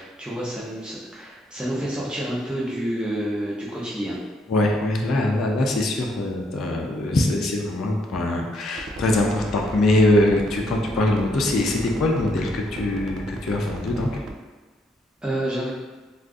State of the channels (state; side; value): normal; both; correlation 0.73